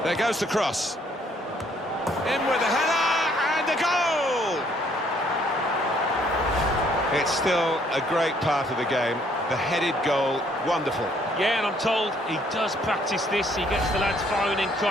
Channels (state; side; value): normal; both; correlation 0.65